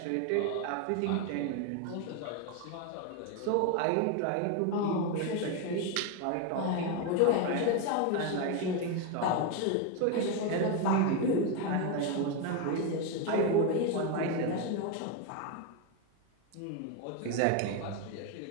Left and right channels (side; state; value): both; different; correlation 0.02